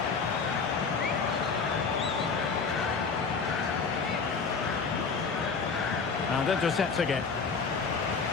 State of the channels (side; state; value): right; quieter; 5.1 dB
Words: And intercepts again.